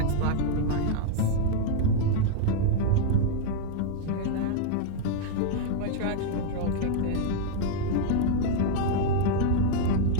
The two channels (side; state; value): both; different; correlation 0.00